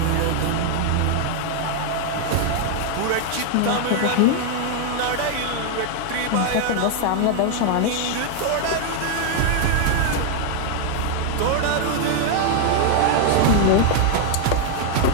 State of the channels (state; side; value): different; both; correlation 0.00